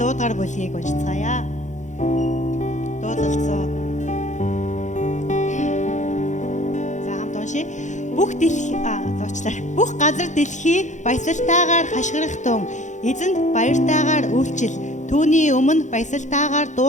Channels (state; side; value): late; right; 0.35 ms